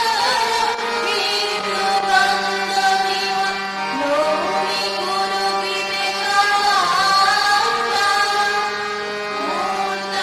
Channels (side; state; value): both; identical; correlation 1.00